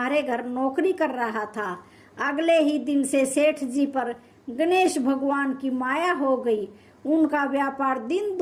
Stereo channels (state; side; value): identical; both; correlation 1.00